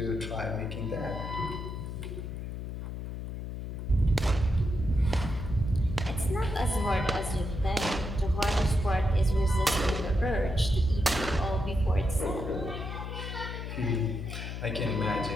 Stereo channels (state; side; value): noise; left; hum, 6 dB below the sound